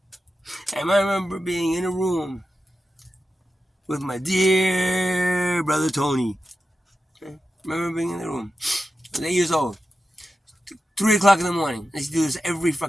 And I remember being in a room with my dear brother Tony. Okay? I remember being in the room. I was 8 years old. 3 o'clock in the morning. I used to do this every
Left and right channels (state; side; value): normal; both; correlation 0.91